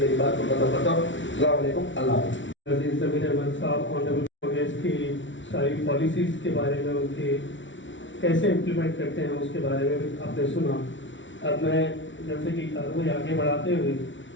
मेरी बात को खत्म करता हूँ। अस्सलाम वालेकुम, अल्लाह हाफ़िज़। ज़मीर अहमद साहब ऑनरेबल कांग्रेस की सारी पॉलिसीज़ के बारे में, उनके कैसे इम्प्लीमेंट करते हैं उसके बारे में भी आपने सुना। अब मैं जैसे कि कार्रवाई आगे बढ़ाते हुए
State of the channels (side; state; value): right; late; 0.55 ms